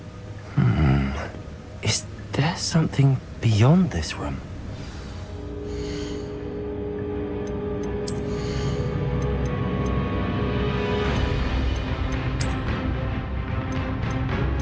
Is there something beyond this room?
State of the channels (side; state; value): both; identical; correlation 1.00